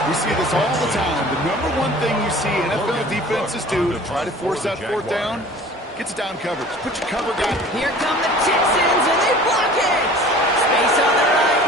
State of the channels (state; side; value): normal; both; correlation 0.45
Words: We see this all the time. The number one thing you see NFL defenses do to try to force that 4th down, gets down coverage. Put your cover guy. Here come the Texans, and they block it. Space on the right.